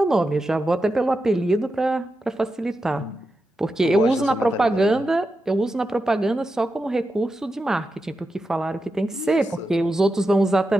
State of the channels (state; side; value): normal; both; correlation 0.89